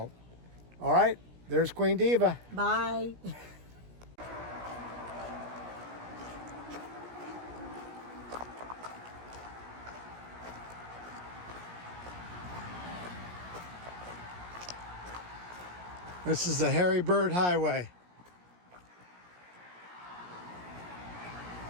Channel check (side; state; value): left; late; 17 ms